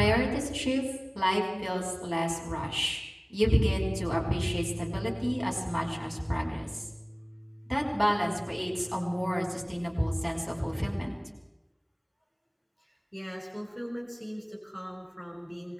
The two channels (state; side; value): identical; both; correlation 1.00